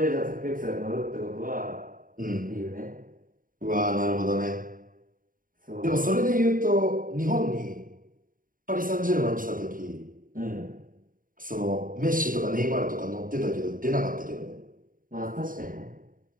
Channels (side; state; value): left; late; 0.40 ms